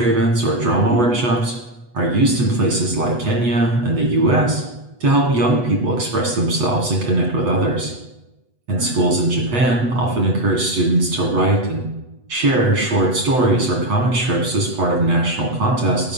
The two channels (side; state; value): left; late; 8.1 ms